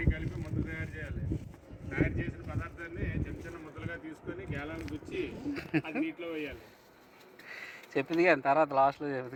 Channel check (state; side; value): identical; both; correlation 1.00